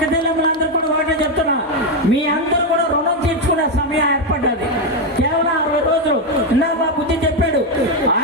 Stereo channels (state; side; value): normal; both; correlation 0.06